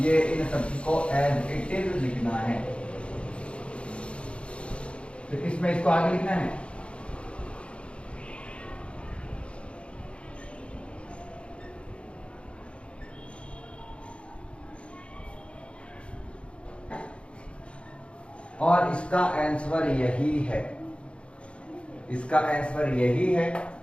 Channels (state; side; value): late; right; 0.058 ms